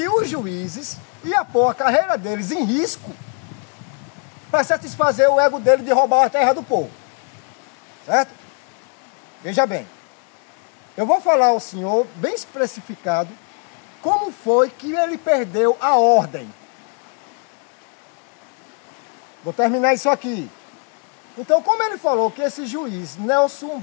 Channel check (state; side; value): quieter; right; 39.7 dB